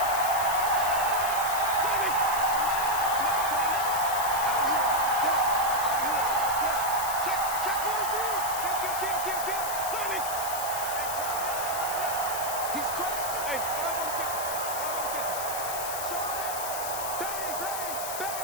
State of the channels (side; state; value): left; noise; hiss, 6 dB below the sound